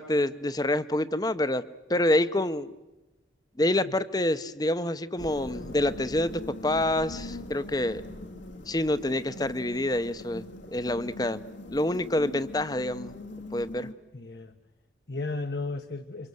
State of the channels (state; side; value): normal; both; correlation 0.62